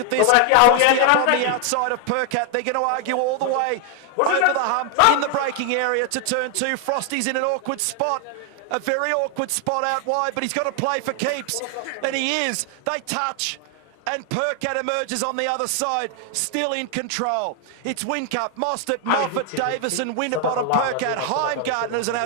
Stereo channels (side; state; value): both; different; correlation 0.00